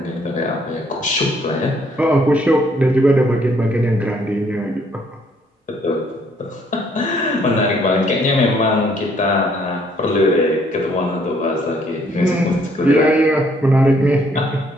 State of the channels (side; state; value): both; normal; correlation 0.66